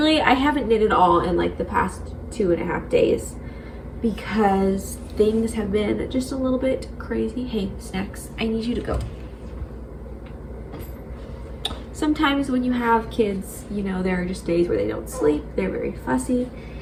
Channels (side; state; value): both; identical; correlation 1.00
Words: haven't knit at all in like the past 2.5 days because things have been just a little bit crazy. Hey, Snacks, I need you to go. Sometimes when you have kids, you know, there are just days where they don't sleep, they're very fussy,